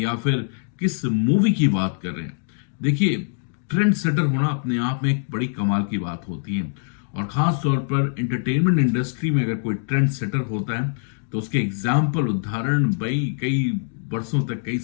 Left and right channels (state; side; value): silent; right; digital silence